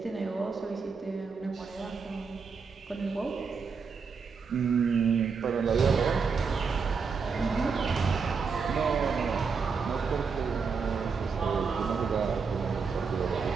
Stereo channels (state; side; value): quieter; left; 5.4 dB